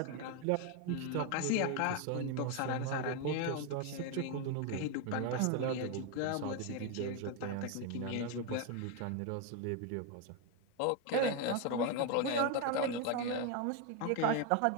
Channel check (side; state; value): both; different; correlation 0.02